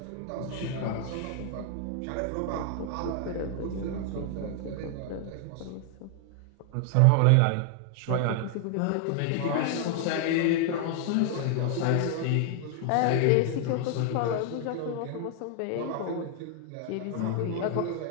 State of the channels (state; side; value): different; both; correlation 0.00